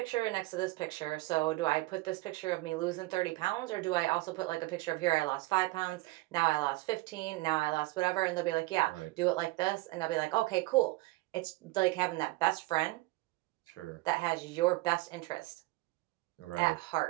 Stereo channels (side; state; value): left; quieter; 21.2 dB